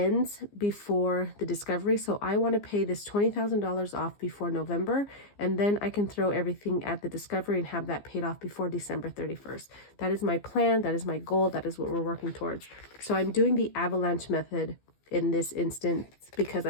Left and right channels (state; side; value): late; right; 15 ms